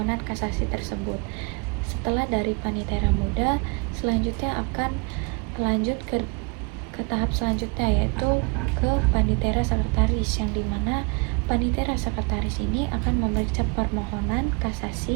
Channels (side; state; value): left; quieter; 31.5 dB